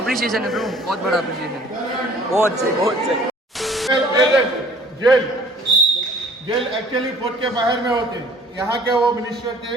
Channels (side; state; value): both; normal; correlation 0.52